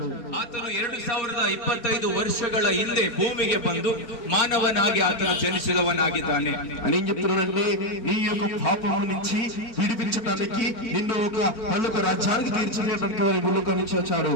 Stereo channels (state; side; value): late; right; 4.4 ms